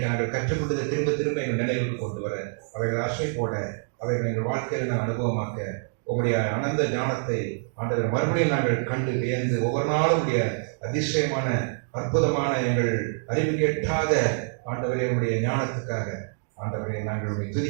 நாங்கள் கற்றுக்கொண்டதை திரும்ப திரும்ப எங்கள் நினைவுக்கு கொண்டு வர, அவைகள் ஆசை போட, அவைகள் எங்கள் வாழ்க்கையில் நாங்கள் அனுபவமாக்க உங்களுடைய அனந்த ஞானத்தை ஆண்டவரை மறுபடியும் நாங்கள் கண்டு வியந்து ஒவ்வொரு நாளும் உடைய அதிசயமான அற்புதமான எங்கள் அறிவு கேட்டாத ஆண்டவரை உடைய ஞானத்துக்காக ஆண்டவரை நாங்கள் உடைய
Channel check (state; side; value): silent; left; digital silence